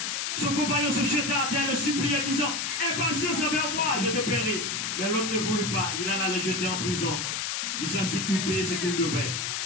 Son compagnon se jeta à terre, le suppliait, disant, aie patience envers moi, je te paierai. Mais l'homme ne voulut pas, il alla le jeter en prison, jusqu'à ce qu'il pût payer ce qu'il devait.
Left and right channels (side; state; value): left; noise; hiss, 1 dB below the sound